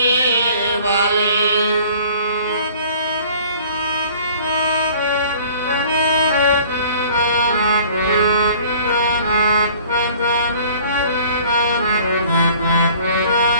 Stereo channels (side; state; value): both; inverted; correlation -0.50